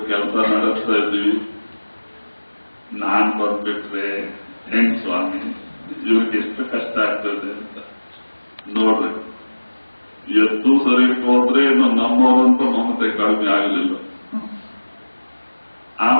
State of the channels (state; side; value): inverted; both; correlation -1.00